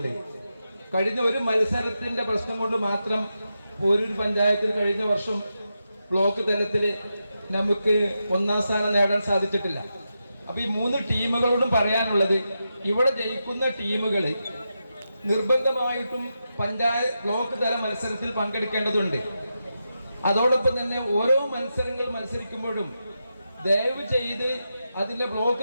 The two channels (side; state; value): both; inverted; correlation -0.88